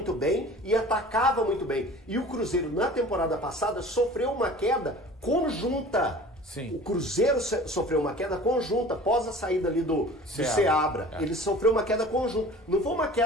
bem e atacava muito bem. E o Cruzeiro, na temporada passada, sofreu uma queda conjunta. Sim. O Cruzeiro sofreu uma queda conjunta após a saída ali do Seabra. Ele sofreu uma queda conjunta. Não foi uma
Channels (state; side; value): normal; both; correlation 0.43